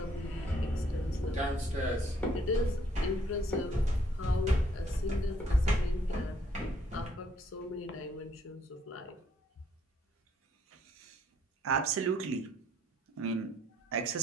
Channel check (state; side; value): normal; both; correlation 0.67